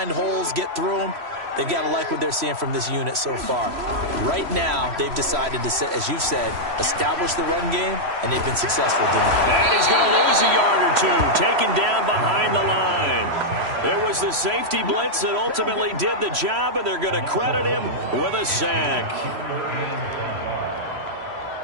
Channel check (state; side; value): late; left; 3.0 ms